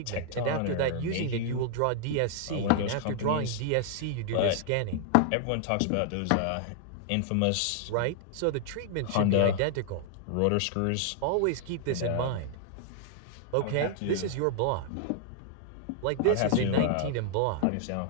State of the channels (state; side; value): different; both; correlation 0.00